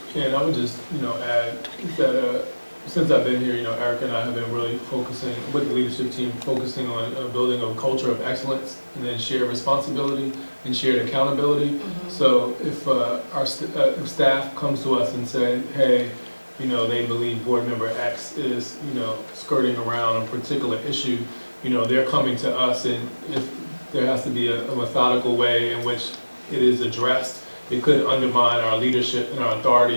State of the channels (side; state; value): both; inverted; correlation -1.00